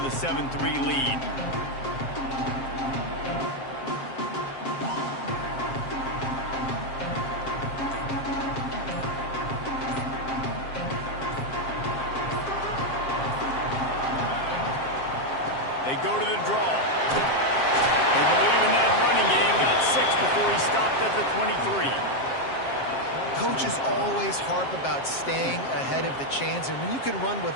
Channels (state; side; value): late; right; 7.5 ms